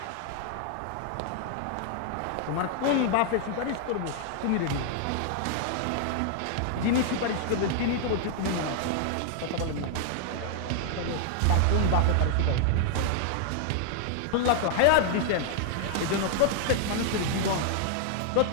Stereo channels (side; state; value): both; different; correlation 0.00